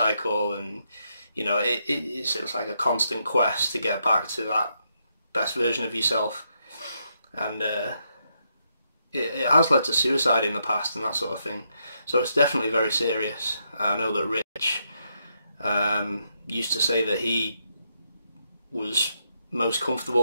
And you know, it's like a constant quest to get back to that best version of yourself. and it has led to suicide in the past and that sort of thing. So it's definitely very serious. I know that Rich used to say that he was most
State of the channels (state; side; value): inverted; both; correlation -0.79